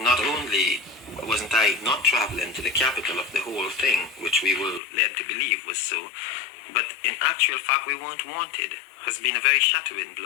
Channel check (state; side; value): drops out; right; at 4.8 s